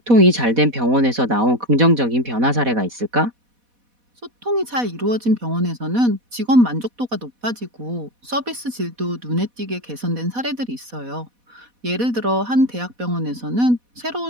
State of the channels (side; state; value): left; late; 4.1 ms